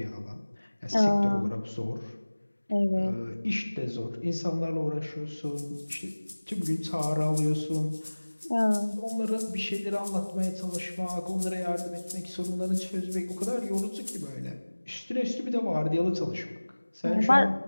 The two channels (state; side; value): inverted; both; correlation -1.00